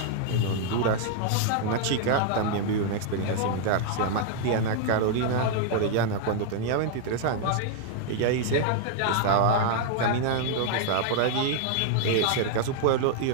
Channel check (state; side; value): different; both; correlation 0.00